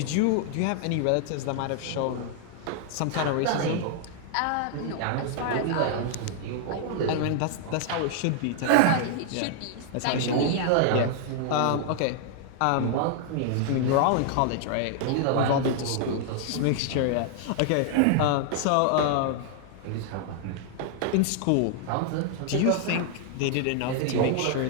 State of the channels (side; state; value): both; different; correlation -0.01